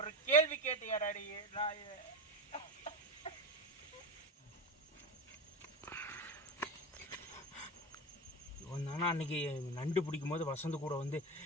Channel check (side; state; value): both; normal; correlation 0.21